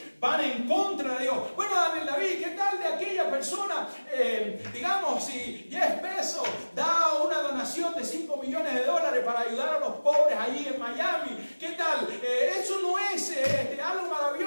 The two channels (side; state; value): both; inverted; correlation -1.00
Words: van en contra de Dios. Bueno, David, ¿qué tal de aquella persona? Digamos, si Jeff Bezos da una donación de $5 millones para ayudar a los pobres allí en Miami. ¿Qué tal? Eso no es algo